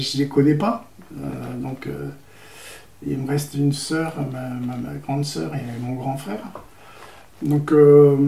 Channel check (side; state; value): both; identical; correlation 1.00